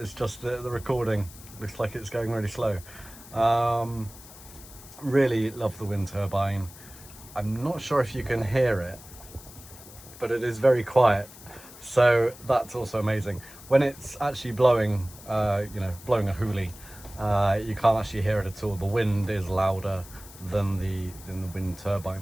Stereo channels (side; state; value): left; noise; hiss, 18 dB below the sound